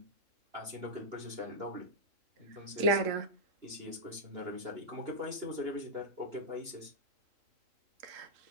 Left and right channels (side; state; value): left; late; 2.9 ms